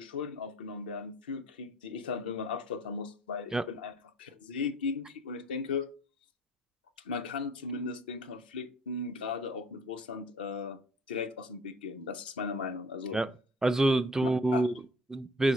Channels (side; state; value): both; normal; correlation 0.50